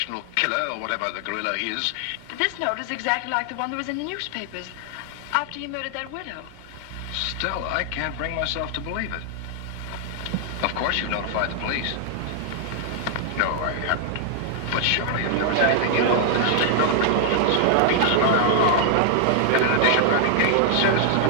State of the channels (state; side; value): different; both; correlation -0.01